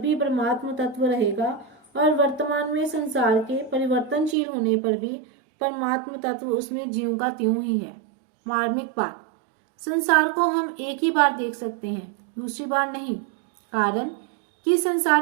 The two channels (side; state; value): left; drops out; at 4.4 s